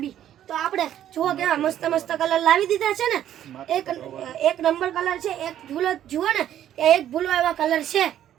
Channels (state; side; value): quieter; left; 11.2 dB